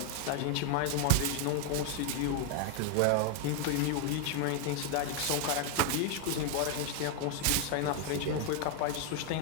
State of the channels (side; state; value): both; different; correlation 0.01